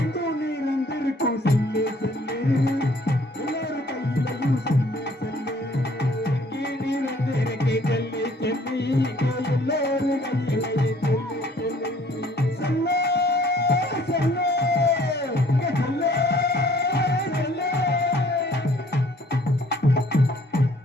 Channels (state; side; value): normal; both; correlation 0.59